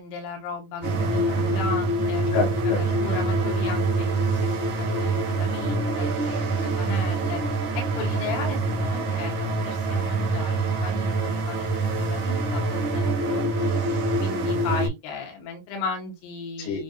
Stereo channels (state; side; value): late; right; 20 ms